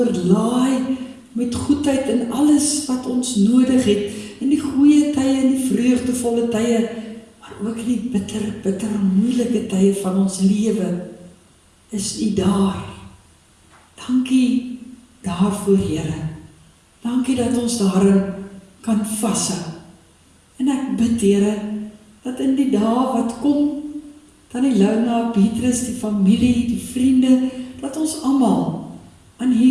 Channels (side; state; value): both; identical; correlation 1.00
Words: met goedheid in alles wat ons nodig het, in die goeie tye, in die vreugdevolle tye, maar ook in die bitter moeilike tye van ons lewe, is U daar. Dankie daarvoor, Here. Dankie dat ons daarin kan vashou. En ek bid, Here, dat in die dae wat kom, Tannie Luna, Petrus, die familie, die vriende, dat ons almal aan